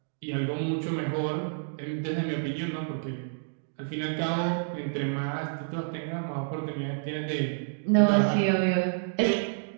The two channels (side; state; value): left; silent; digital silence